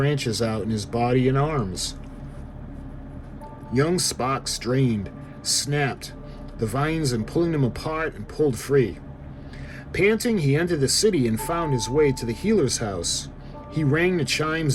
out in his body and arms. Young Spock strained, snapped the vines and pulling them apart and pulled free. Panting, he entered the city and found his way to the healer's house. He rang the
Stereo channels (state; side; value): identical; both; correlation 1.00